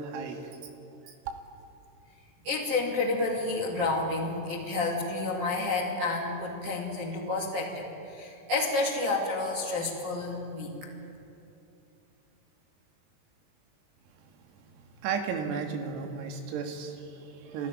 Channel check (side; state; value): left; late; 20 ms